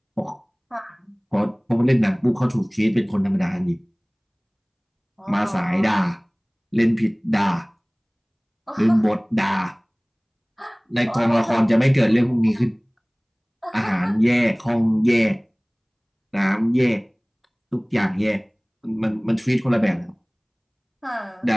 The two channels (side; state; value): both; identical; correlation 1.00